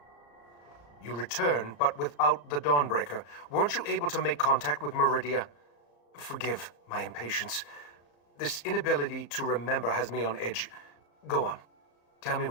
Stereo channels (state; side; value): late; right; 34 ms